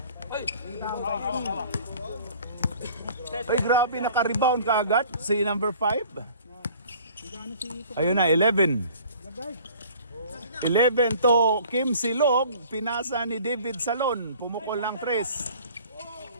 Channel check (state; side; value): inverted; both; correlation -0.50